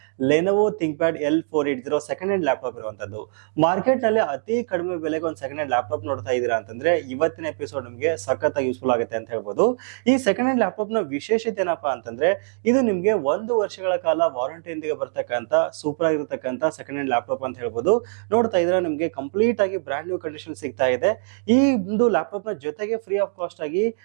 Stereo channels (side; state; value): left; silent; digital silence